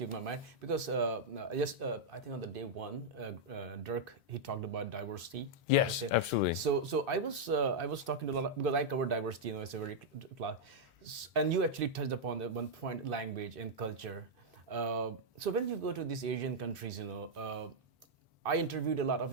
my mind. Because I think on the day one, Dirk, he talked about diversity. Yes, absolutely. So I was talking to a lot because I cover diversity. It's a very class, and you actually touched upon the one point, language and culture. So when you go to these Asian countries, I interviewed a lot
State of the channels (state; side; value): normal; both; correlation -0.04